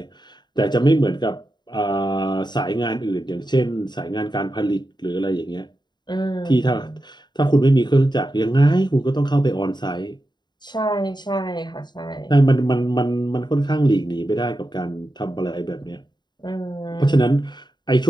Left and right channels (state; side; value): late; right; 0.21 ms